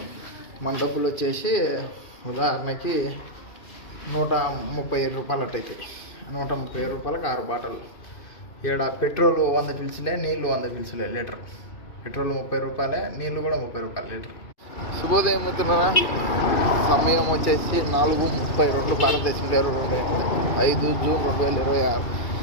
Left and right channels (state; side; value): late; right; 2.5 ms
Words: మన డబ్బులు వచ్చేసి ఉదాహరణకి 137 రూపాయలు అట్టయితే 137 రూపాయలకు 6 బాటలు. ఇక్కడ పెట్రోల్ 100 పీల్చులే, నీళ్ళు 100 పీల్చులే లీటర్. పెట్రోల్ 30 రూపాయలే, నీళ్ళు కూడా 30 రూపాయలు లీటర్. శుభోదయం అవుతున్నారా? సమయం వచ్చేసి 4:32 భారతదేశంలో 5 జూన్ 2026.